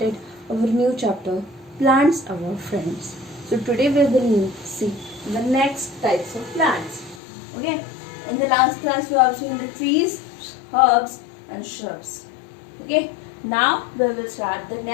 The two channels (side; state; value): right; drops out; at 7.2 s